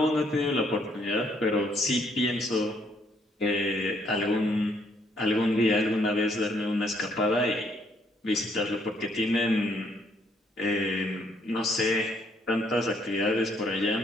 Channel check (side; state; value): both; normal; correlation 0.69